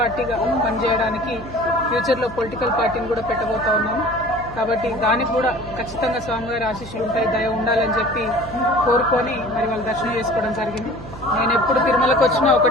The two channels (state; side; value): noise; right; hum, 15 dB below the sound